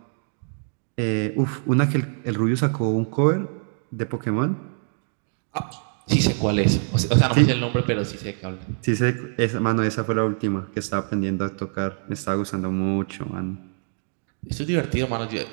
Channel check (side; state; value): left; silent; 60 dB below the other